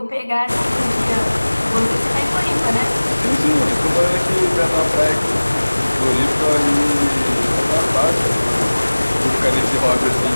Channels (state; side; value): inverted; both; correlation -1.00